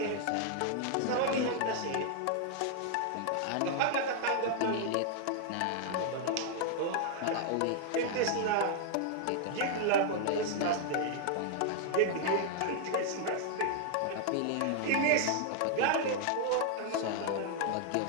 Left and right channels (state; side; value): different; both; correlation 0.00